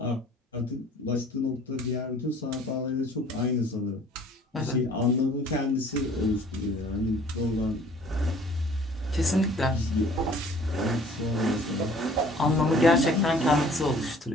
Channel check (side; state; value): both; normal; correlation 0.53